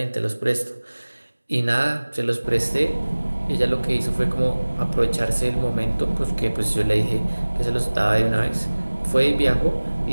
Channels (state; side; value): inverted; both; correlation -1.00